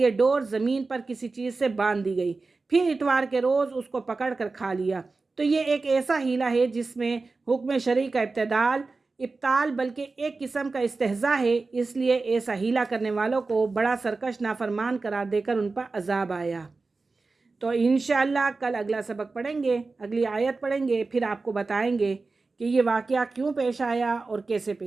ڈور زمین پر کسی چیز سے باندھ دی گئی، پھر اتوار کے روز اس کو پکڑ کر کھا لیا، تو یہ ایک ایسا ہیلہ ہے جس میں حکم شرعی کا ابطال بلکہ ایک قسم کا استہزاء ہے۔ اس لیے ایسا ہیلہ کرنے والوں کو بڑا سرکش نافرمان قرار دے کر ان پر عذاب آیا۔ تو انشاءاللہ کل اگلا سبق پڑھیں گے، اگلی آیت پڑھیں گے، پھر آپ کو بتائیں گے کہ یہ واقعہ کیوں پیش آیا اور کیسے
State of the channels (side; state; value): left; quieter; 3.8 dB